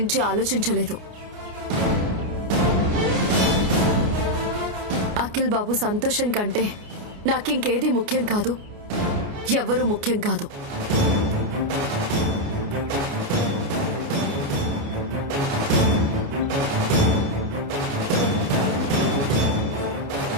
ఆలోచించలేదు. అఖిల్ బాబు సంతోషం కంటే నాకింకేది ముఖ్యం కాదు, ఎవ్వరూ ముఖ్యం కాదు.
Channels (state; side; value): late; left; 29 ms